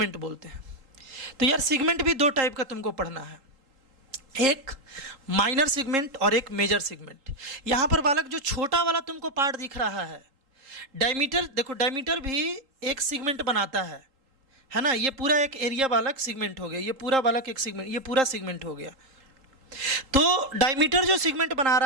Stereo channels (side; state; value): left; late; 3.8 ms